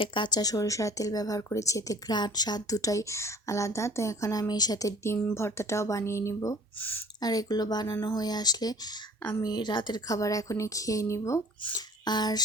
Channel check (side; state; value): both; normal; correlation 0.49